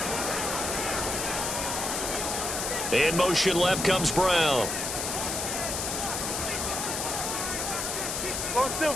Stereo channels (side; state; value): left; noise; hiss, 2 dB below the sound